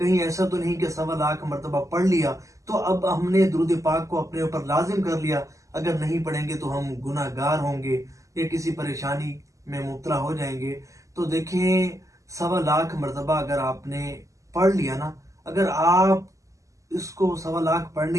ایسا تو نہیں کہ 1.25 مرتبہ پڑھ لیا تو اب ہم نے درود پاک کو اپنے اوپر لازم کر لیا، اگر نہیں پڑھیں گے تو ہم گناہ گار ہوں گے یا کسی پریشانی میں مبتلا ہو جائیں گے۔ تو دیکھیں، 1.25 مرتبہ اگر آپ نے پڑھ لیا نا، اگر آپ اس کو 1.25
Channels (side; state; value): left; late; 0.16 ms